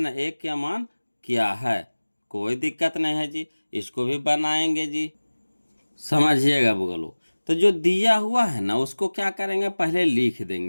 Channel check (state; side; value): inverted; both; correlation -1.00